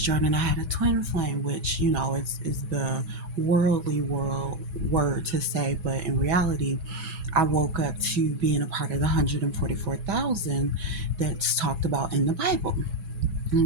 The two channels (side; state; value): left; late; 6.1 ms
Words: and I had a twin flame, which, is the worldly world word to say, but in reality, I woke up to being a part of the 144,000 that's talked about in the Bible.